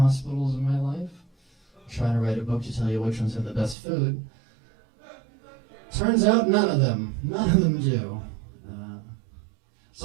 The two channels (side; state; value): left; drops out; at 3.8 s